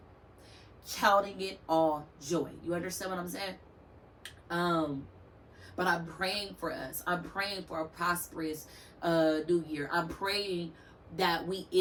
Counting it all joy. You understand what I'm saying? But I'm praying for us. I'm praying for a prosperous new year. I'm praying that we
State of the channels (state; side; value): identical; both; correlation 1.00